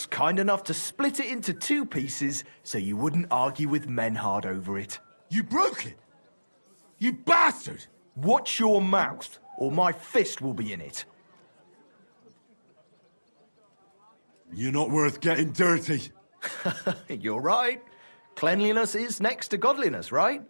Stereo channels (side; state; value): both; inverted; correlation -1.00